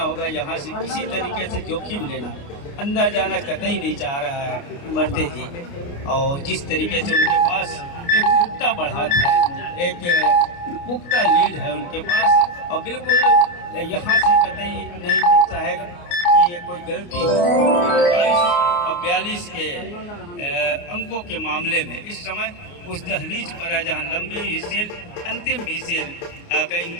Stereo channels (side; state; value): right; late; 29 ms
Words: होगा। यहाँ से किसी तरीके से जोखिम लेना अंदर जाना कतई नहीं चाह रहा है मरते ही। और जिस तरीके से उनके पास एक पुख्ता बढ़त है, एक पुख्ता लीड है उनके पास और बिल्कुल यहाँ से कतई नहीं दिखता है कि ये कोई गलती हो। 22 और 42 के अंकों के मामले में इस समय उस दहलीज पर है जहाँ लंबी विसेल अंतिम विसेल का